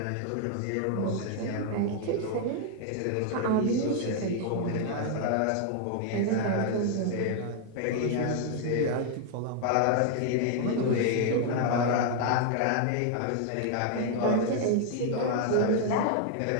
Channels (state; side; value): different; both; correlation 0.00